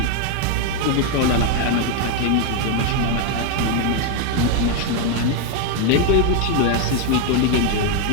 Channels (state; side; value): different; both; correlation 0.01